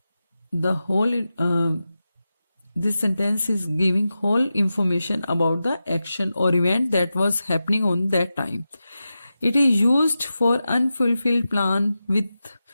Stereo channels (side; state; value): both; inverted; correlation -0.92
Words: the whole this sentence is giving whole information about the action or event that was happening on that time. It is used for unfulfilled plan with